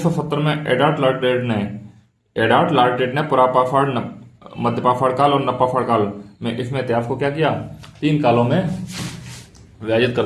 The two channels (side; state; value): both; identical; correlation 1.00